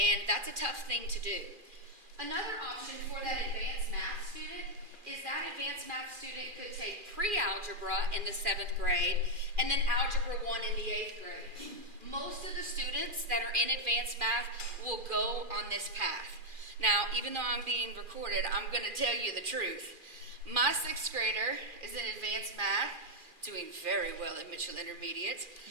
that's a tough thing to do. Another option for that advanced math student is that advanced math student could take pre-algebra in the 7th grade and then algebra 1 in the 8th grade. Most of the students that are in advanced math will go on this path. Now, even though I'm being recorded, I'm going to tell you the truth. My 6th grader is in advanced math, doing very well at Mitchell Intermediate,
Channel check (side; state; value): left; late; 2.4 ms